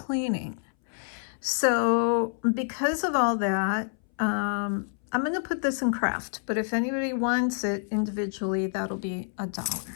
So because of all that, I'm going to put this in craft, but if anybody wants it individually, that'll be $1.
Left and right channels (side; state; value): right; silent; 60 dB below the other